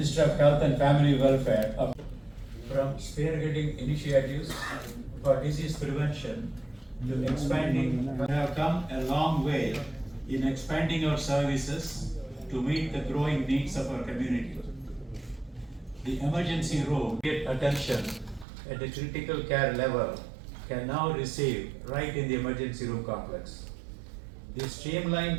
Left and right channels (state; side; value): drops out; left; at 18.4 s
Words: of Health and Family Welfare, from spearheading initiatives for disease prevention to expanding, we have come a long way in expanding our services to meet the growing needs of our community. The emergency room get attention at the critical care level can now receive right in the emergency room complex. The